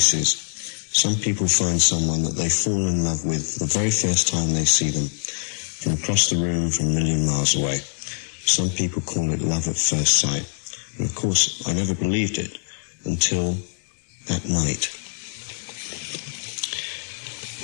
some people find someone that they fall in love with the very first time they see them, from across the room, from a million miles away. Some people call it love at first sight. And of course, I never believed it until that night.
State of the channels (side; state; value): right; silent; digital silence